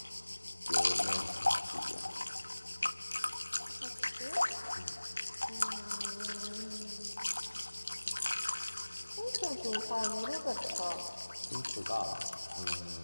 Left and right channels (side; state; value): both; inverted; correlation -1.00